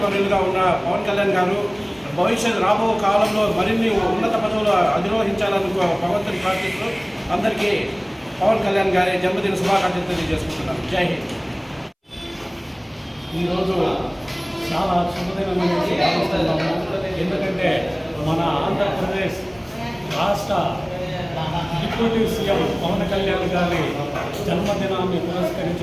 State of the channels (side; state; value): both; identical; correlation 1.00